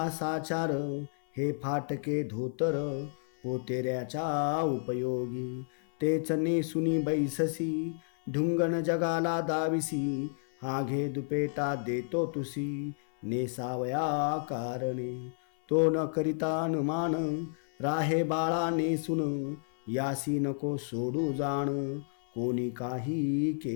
साचार, हे फाटके धोतर पोतेऱ्याच्या उपयोगी. तेच नेसुनी बैससी ढुंगण जगाला दाविसी, हा घे दुपेटा देतो तुसी नेसावया कारणे. तो न करिता अनुमान राहे बाळा नेसून, यासी नको सोडू जाण कोणी काही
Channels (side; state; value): right; silent; 57 dB below the other